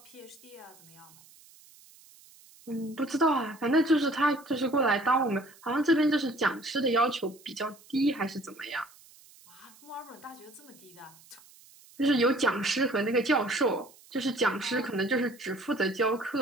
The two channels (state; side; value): noise; right; hiss, 25 dB below the sound